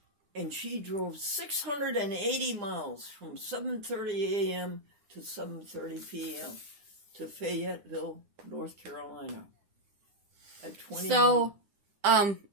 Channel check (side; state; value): left; late; 9.8 ms